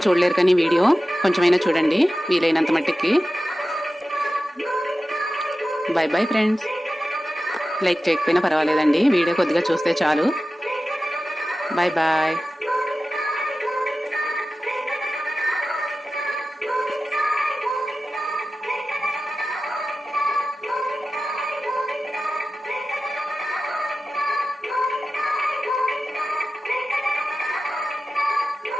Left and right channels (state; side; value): normal; both; correlation 0.94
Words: చూడలేరు కానీ వీడియో కొంచెమైనా చూడండి వీలైనంత మట్టుకి. Bye bye friends. లైక్ చేయకపోయినా పర్వాలేదండి, వీడియో కొద్దిగా చూస్తే చాలు. Bye bye.